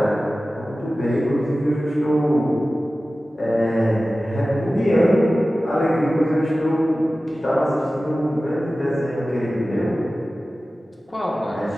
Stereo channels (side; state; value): both; normal; correlation 0.96